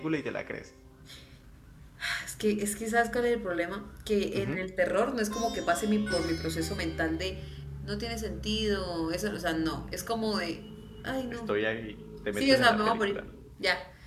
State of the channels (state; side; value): identical; both; correlation 1.00